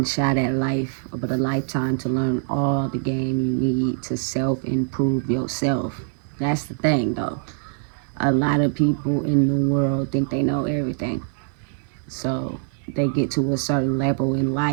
shot at life, but a lifetime to learn all the game you need to self-improve yourself. That's the thing, though. A lot of people in the world think they know everything. So they get to a certain level in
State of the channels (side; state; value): left; silent; digital silence